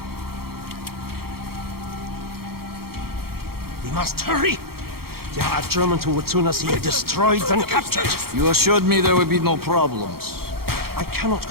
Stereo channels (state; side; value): late; left; 0.94 ms